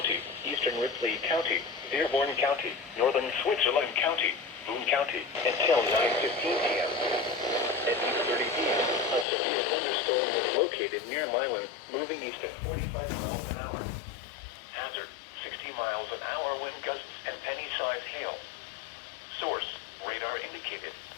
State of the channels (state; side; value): drops out; right; at 9.2 s